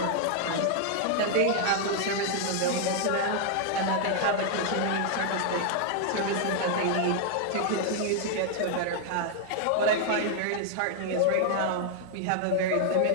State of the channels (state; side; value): different; both; correlation 0.00